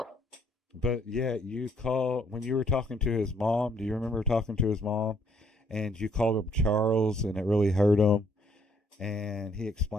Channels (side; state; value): both; normal; correlation 0.67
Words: But yeah, you call when you were talking to his mom. Do you remember talking to his mom? And you called him Charles, and it really hurt him. And he